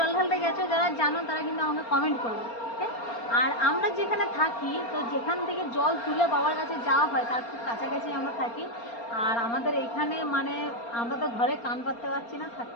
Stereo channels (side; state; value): right; late; 4.3 ms